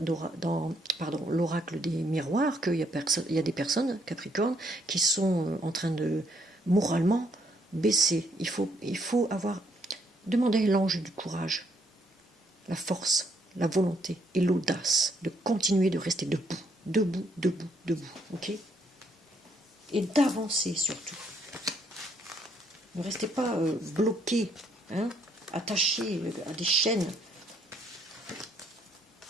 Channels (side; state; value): both; normal; correlation 0.71